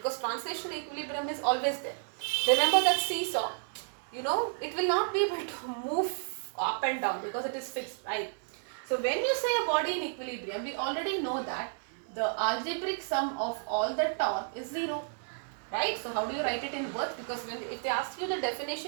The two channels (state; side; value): silent; left; digital silence